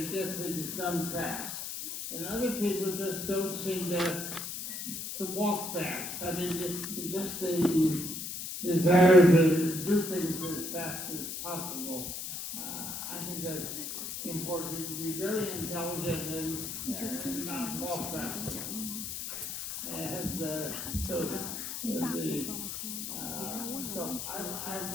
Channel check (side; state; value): left; noise; hiss, 6 dB below the sound